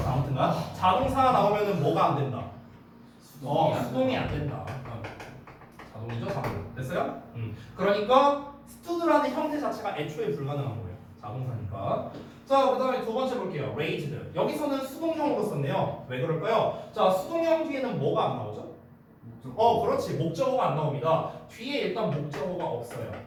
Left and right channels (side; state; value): both; identical; correlation 1.00